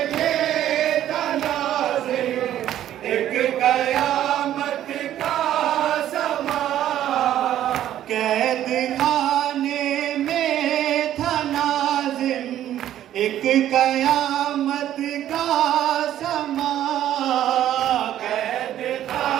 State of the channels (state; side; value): quieter; left; 11.9 dB